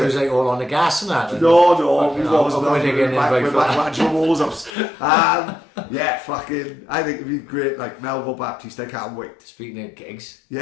it was like all on the gas and that. No, we've always been back to walls ups. Yeah, fucking, I think it'd be great, like Melville Baptiste, I can't wait. Speaking of gigs,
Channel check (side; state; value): right; drops out; at 4.7 s